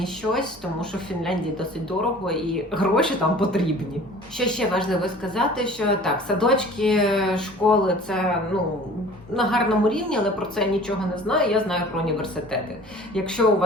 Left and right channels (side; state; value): both; normal; correlation 0.45